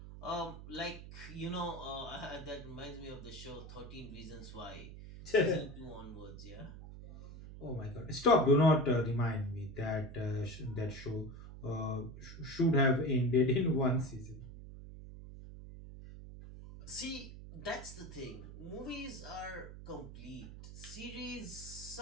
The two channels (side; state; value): right; noise; hum, 13 dB below the sound